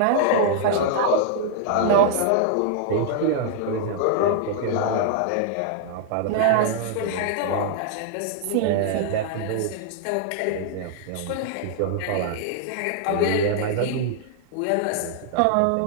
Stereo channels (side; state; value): both; different; correlation -0.01